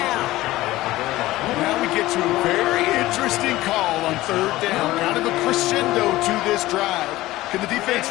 Now we get to a very interesting call on 3rd down. Kind of a crescendo to this drive. Can the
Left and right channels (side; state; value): right; quieter; 17.2 dB